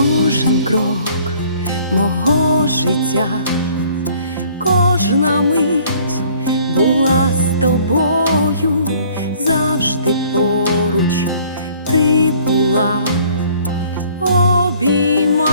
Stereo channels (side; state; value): both; inverted; correlation -0.57